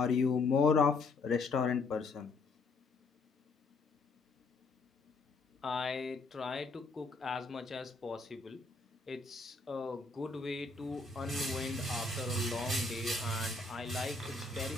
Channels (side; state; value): right; quieter; 3.8 dB